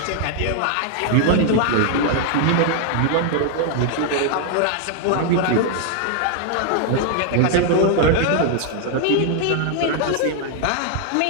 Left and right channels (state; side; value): different; both; correlation 0.00